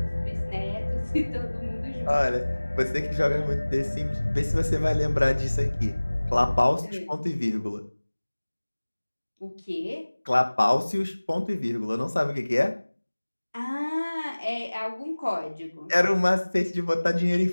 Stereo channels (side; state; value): both; inverted; correlation -1.00